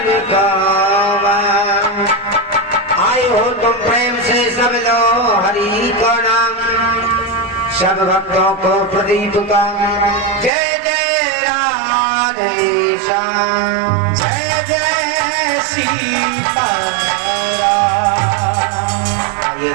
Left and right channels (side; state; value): left; drops out; at 10.5 s